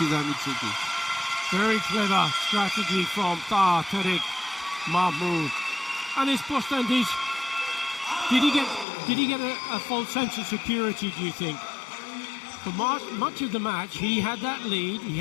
Tsuki. Very clever strategy from Taha Tariq Mahmoud. And it's Bostandic. Did he get a false sense of security, do you think? For much of the match, he had that lead, he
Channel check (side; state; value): right; drops out; at 8.8 s